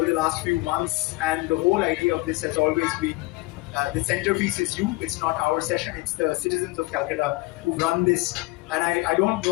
the last few months. And the whole idea of this has always been the centerpiece is you. It's not our session. It's the citizens of Calcutta who run this. And I don't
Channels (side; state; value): right; quieter; 22.0 dB